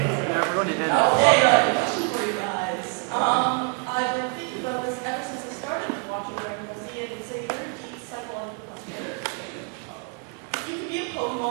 Okay, question for you guys. I've been thinking about this ever since I started watching Dragonball Z, and it's a very deep psychological question. If you could be a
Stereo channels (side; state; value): left; quieter; 33.7 dB